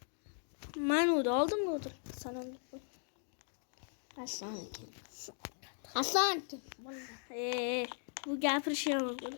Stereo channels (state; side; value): silent; right; 52 dB below the other